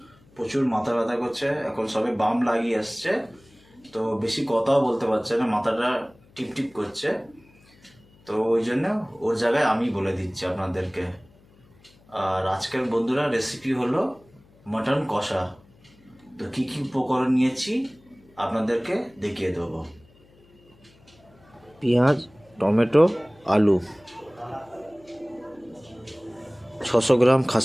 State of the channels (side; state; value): left; noise; hum, 29 dB below the sound